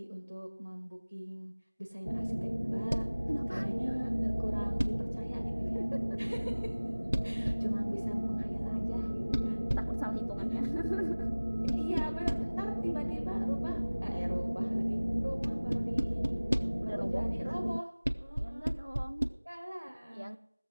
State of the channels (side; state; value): both; inverted; correlation -1.00